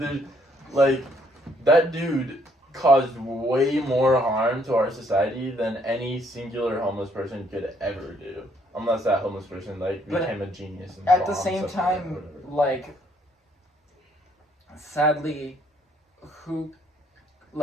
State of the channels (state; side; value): normal; both; correlation 0.68